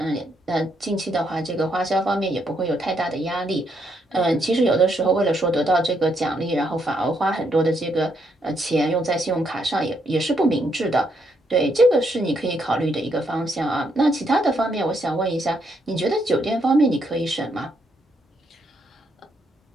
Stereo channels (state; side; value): normal; both; correlation 0.76